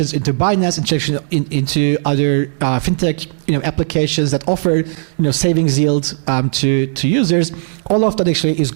into Binance, integration into other fintech applications that offer savings yield to users. All of that actually is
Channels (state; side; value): silent; left; digital silence